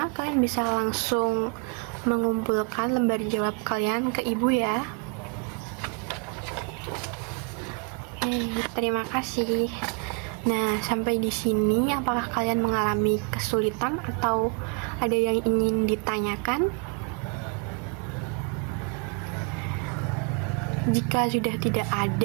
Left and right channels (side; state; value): left; quieter; 32.5 dB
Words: kalian bisa langsung mengumpulkan lembar jawab kalian ke ibu ya. Terima kasih. Nah, sampai di sini apakah kalian mengalami kesulitan atau ada yang ingin ditanyakan? Jika sudah tidak